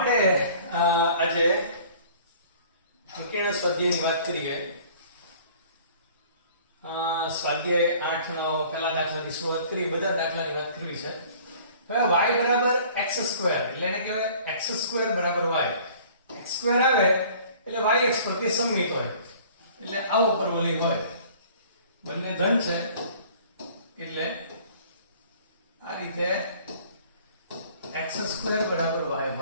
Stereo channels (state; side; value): inverted; both; correlation -0.51